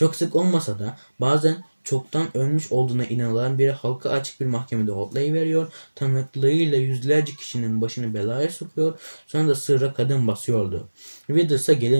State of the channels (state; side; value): inverted; both; correlation -1.00